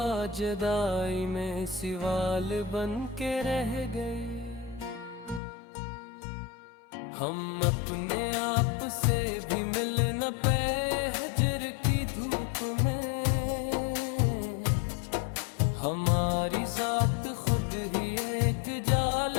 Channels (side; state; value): right; drops out; at 5.4 s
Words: जुदाई में सिवाल बन के रह गई। हम अपने आप से भी मिल न पे हजर की धूप में, हमारी जात खुद ही एक